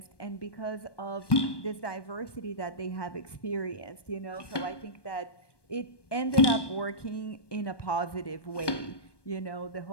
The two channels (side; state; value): right; late; 1.2 ms